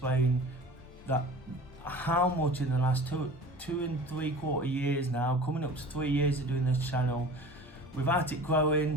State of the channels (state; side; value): normal; both; correlation 0.40